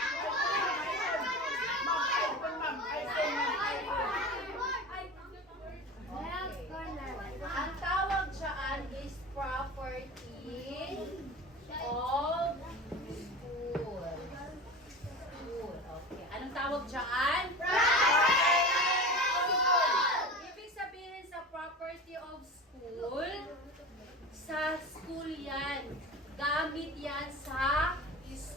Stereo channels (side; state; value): both; normal; correlation 0.31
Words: property of school. School. Okay. Anong tawag dyan? Ibig sabihin sa property of school, sa school yan. Gamit yan sa